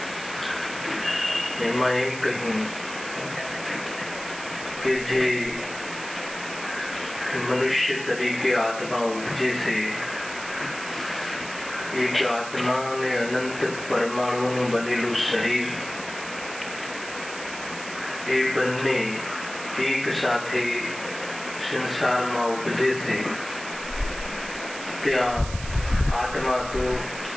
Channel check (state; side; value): noise; right; hiss, 12 dB below the sound